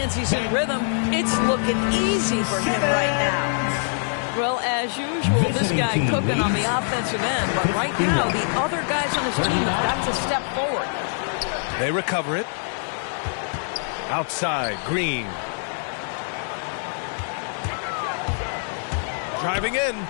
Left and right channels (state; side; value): silent; right; 63 dB below the other